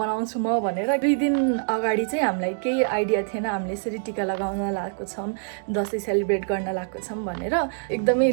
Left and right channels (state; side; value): silent; left; digital silence